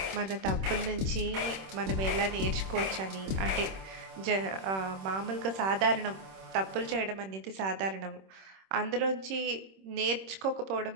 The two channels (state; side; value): late; left; 26 ms